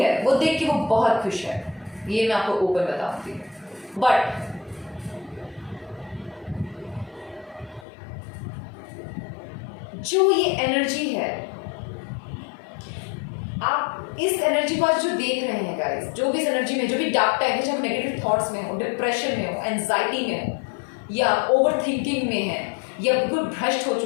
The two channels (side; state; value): right; drops out; at 7.9 s